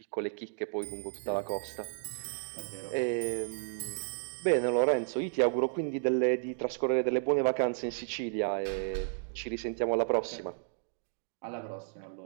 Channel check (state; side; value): silent; left; digital silence